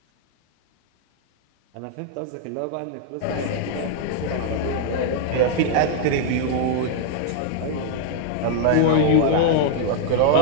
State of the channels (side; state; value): both; different; correlation 0.00